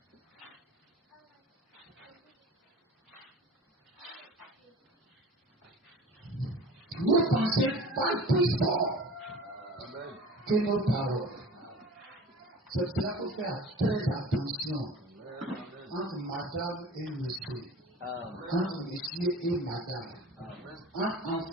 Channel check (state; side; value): normal; both; correlation 0.40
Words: Nos pensées parlent plus fort que nos paroles. C'est pour cela qu'il faut faire très attention entre madame et monsieur, entre monsieur et madame, entre